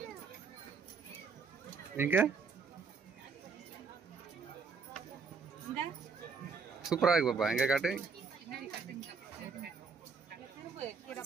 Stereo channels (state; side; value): quieter; left; 5.0 dB